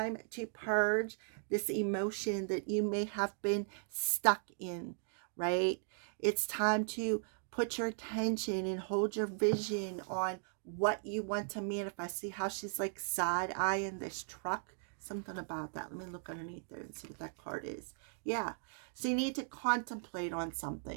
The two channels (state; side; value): silent; left; digital silence